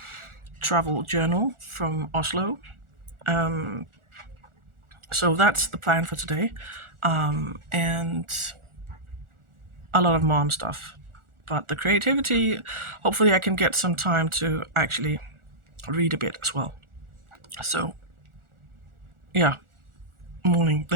travel journal from Oslo. So that's the plan for today. And a lot of mom stuff. But the creativity, hopefully I can get some time to actually read a bit as well. So yeah, morning.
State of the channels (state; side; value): late; left; 1.4 ms